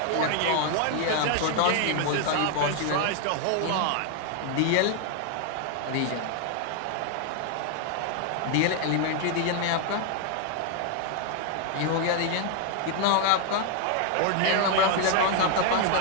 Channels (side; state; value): both; different; correlation 0.00